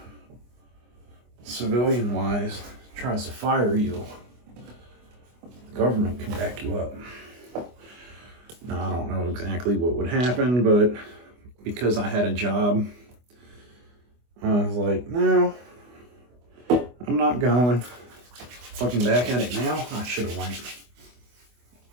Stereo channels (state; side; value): late; left; 24 ms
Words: civilian wise, tries to fire you, the government can back you up. Now, I don't know exactly what would happen, but because I had a job, I was like, no, I'm not going. Looking back at it now, I should have went.